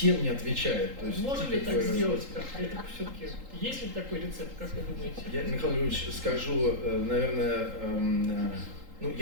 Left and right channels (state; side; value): late; left; 3.8 ms